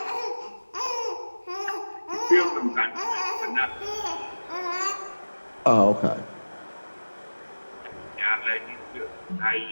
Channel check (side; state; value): both; inverted; correlation -1.00